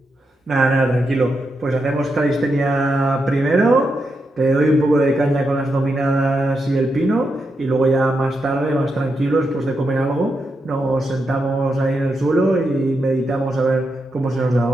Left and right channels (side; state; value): both; normal; correlation 0.85